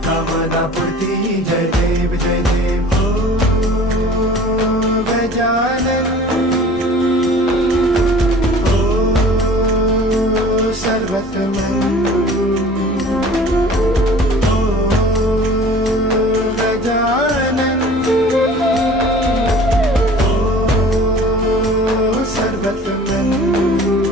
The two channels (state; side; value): normal; both; correlation 0.46